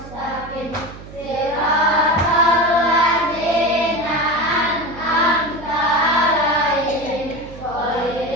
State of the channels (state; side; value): noise; right; hum, 16 dB below the sound